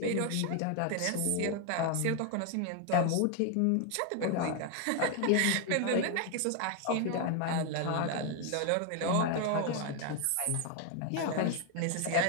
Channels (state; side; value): different; both; correlation 0.01